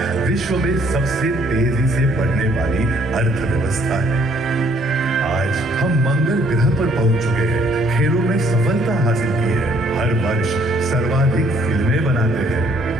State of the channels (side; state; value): both; normal; correlation 0.64